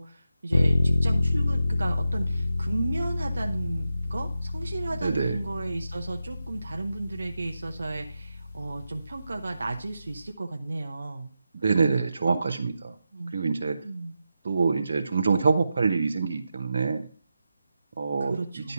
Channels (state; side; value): inverted; both; correlation -0.89